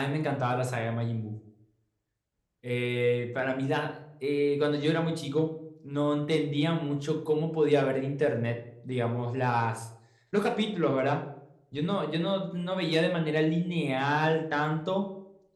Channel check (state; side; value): identical; both; correlation 1.00